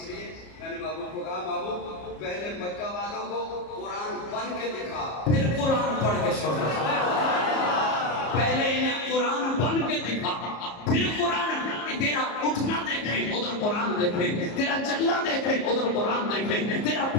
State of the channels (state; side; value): late; right; 34 ms